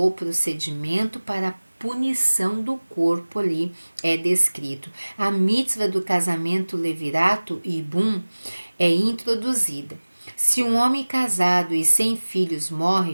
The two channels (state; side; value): inverted; both; correlation -1.00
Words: procedimento para a punição do corpo ali é descrito. A mitzvah do casamento levirato e bum é introduzida. Se um homem casado e sem filhos